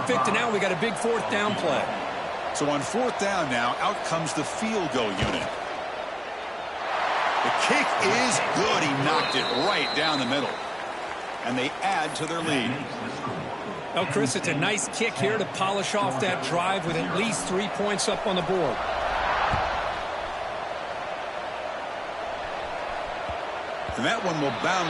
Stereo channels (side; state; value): both; identical; correlation 1.00